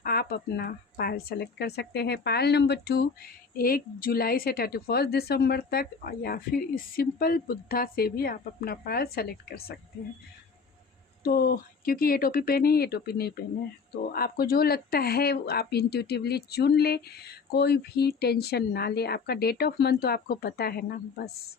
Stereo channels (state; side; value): quieter; right; 5.1 dB